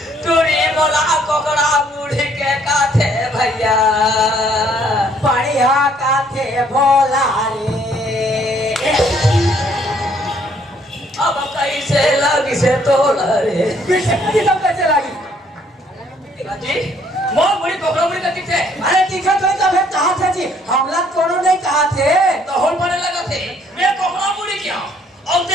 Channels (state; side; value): normal; both; correlation 0.64